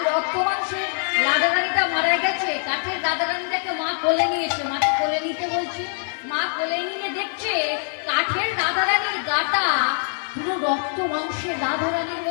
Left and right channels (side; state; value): right; silent; 59 dB below the other